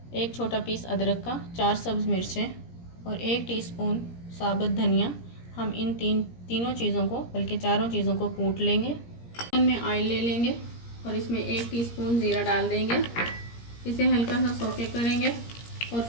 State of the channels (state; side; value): late; right; 17 ms